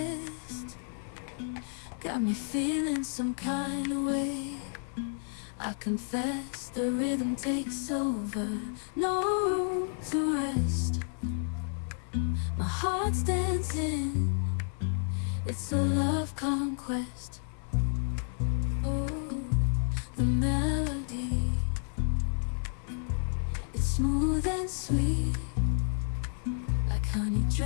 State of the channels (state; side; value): silent; right; 57 dB below the other